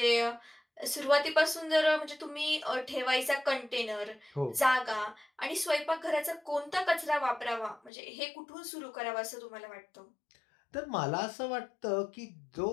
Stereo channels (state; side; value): drops out; right; at 7.9 s